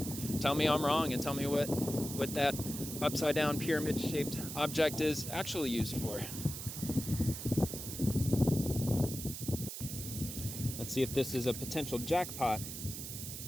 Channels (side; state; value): right; noise; hiss, 8 dB below the sound